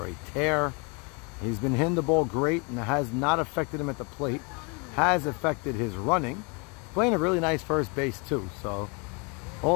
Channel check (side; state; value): right; quieter; 32.2 dB